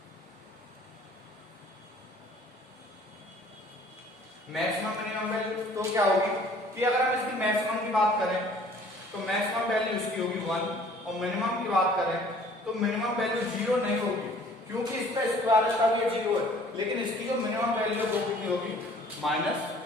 मैक्सिमम मिनिमम वैल्यू तो क्या होगी कि अगर हम इसकी मैक्सिमम की बात करें तो मैक्सिमम वैल्यू इसकी होगी 1 और मिनिमम की बात करें तो मिनिमम वैल्यू 0 नहीं होगी, क्योंकि इसका स्क्वायर का भी 0 है, लेकिन इसकी जो मिनिमम वैल्यू है वो कितनी होगी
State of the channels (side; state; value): both; normal; correlation 0.54